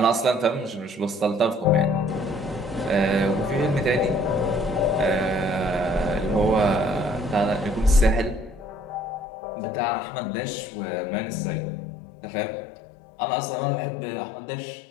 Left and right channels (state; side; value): drops out; right; at 9.2 s